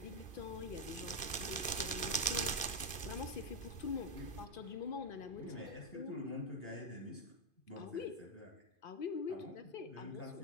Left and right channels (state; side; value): late; right; 2.5 ms